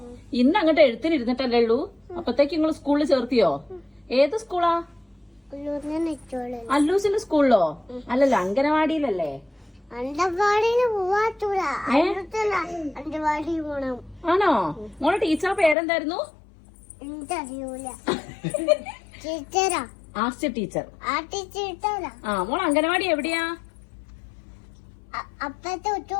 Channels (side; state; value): right; drops out; at 15.8 s